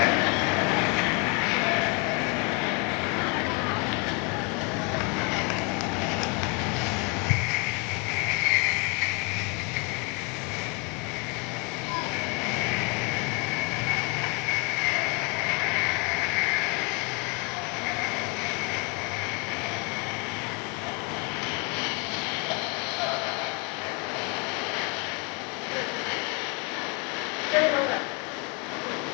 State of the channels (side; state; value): right; quieter; 30.1 dB